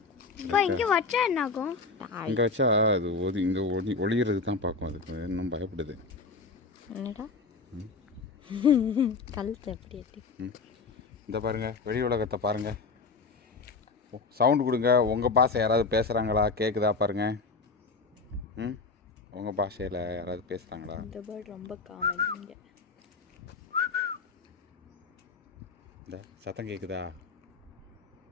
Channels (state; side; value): quieter; right; 4.3 dB